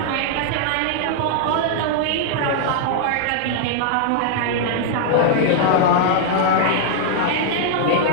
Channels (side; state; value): both; different; correlation -0.01